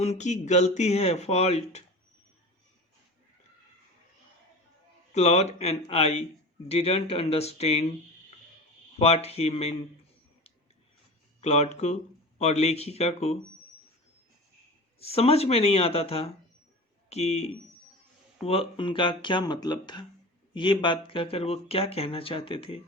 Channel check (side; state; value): both; normal; correlation 0.33